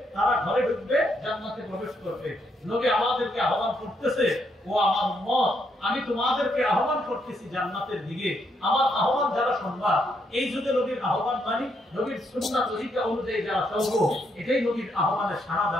তারা ঘরে ঢুকবে, জান্নাতে প্রবেশ করবে। নবী আমাদেরকে আহ্বান করতেছে, ও আমার উম্মত, আমি তোমাদেরকে আহ্বান করতেছি জান্নাতের দিকে। আমার আহ্বান যারা শুনবা, এই যুগে নবীর আহ্বান মানি, নবীর সুন্নাহ তরিকা অনুযায়ী যারা চলবো, এটাই নবীর আহ্বানে সাড়া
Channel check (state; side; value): normal; both; correlation 0.76